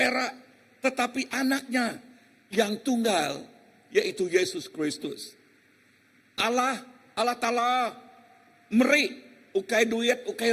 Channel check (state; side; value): identical; both; correlation 1.00